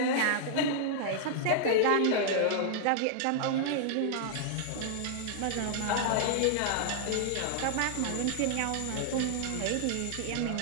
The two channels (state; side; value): different; both; correlation -0.01